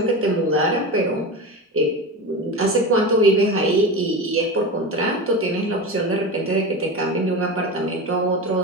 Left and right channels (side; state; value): both; normal; correlation 0.25